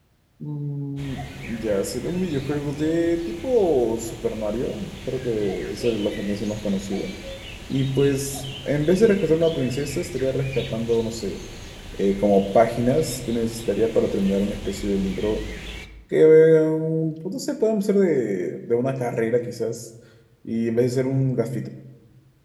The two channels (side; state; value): both; identical; correlation 1.00